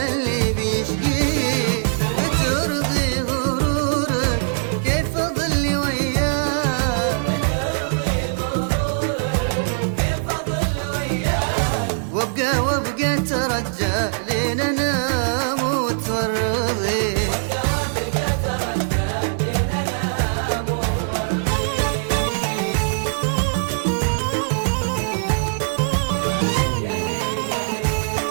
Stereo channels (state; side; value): silent; left; 63 dB below the other